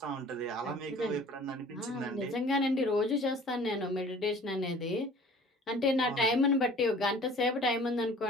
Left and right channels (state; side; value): normal; both; correlation 0.48